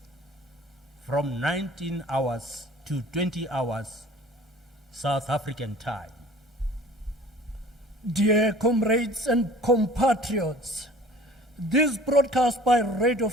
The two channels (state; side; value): normal; both; correlation 0.47